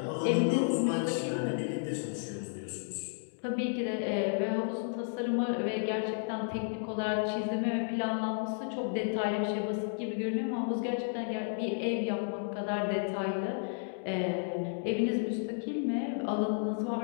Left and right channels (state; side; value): silent; right; digital silence